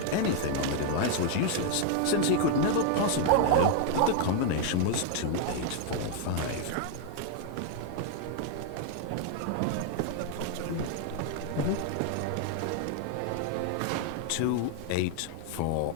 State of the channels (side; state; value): both; different; correlation 0.00